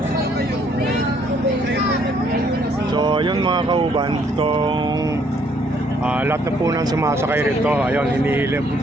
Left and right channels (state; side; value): normal; both; correlation 0.66